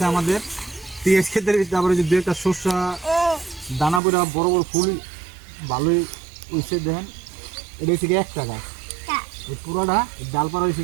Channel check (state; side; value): drops out; left; at 4.0 s